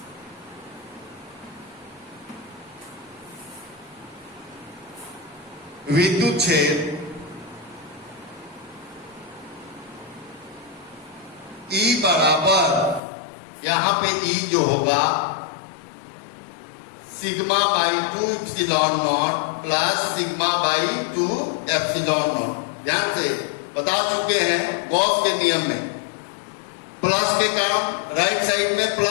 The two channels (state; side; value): drops out; right; at 13.0 s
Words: विद्युत क्षेत्र E बराबर, यहां पे E जो होगा sigma by 2 epsilon not plus sigma by 2 epsilon not. ध्यान से बता चुके हैं गॉस के नियम में, प्लस के कारण राइट साइड में